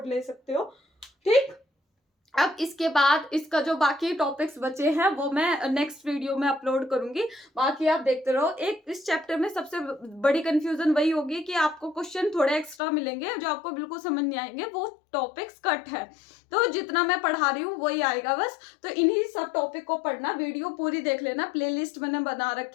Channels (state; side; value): drops out; right; at 12.8 s